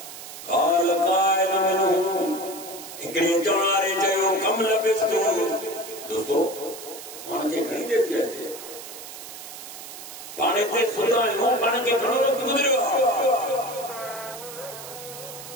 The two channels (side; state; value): right; noise; hiss, 12 dB below the sound